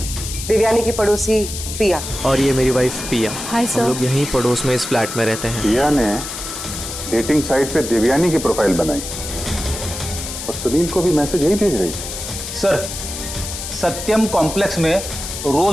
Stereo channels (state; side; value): noise; left; hiss, 7 dB below the sound